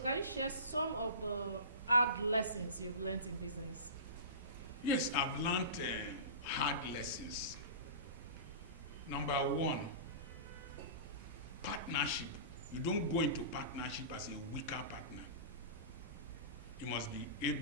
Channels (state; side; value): inverted; both; correlation -0.32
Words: can you share some of the hard lessons you've learned in business? Yes, I've learned hard lessons. Number one, partnership. You don't go into partnership as a weaker partner. You must be